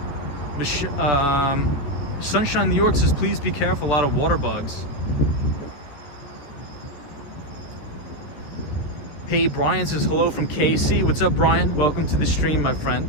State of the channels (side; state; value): right; late; 14 ms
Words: Sunshine New York says, please be careful, a lot of water bugs. Hey, Brian says, hello from KC. What's up, Brian? Welcome to the stream, my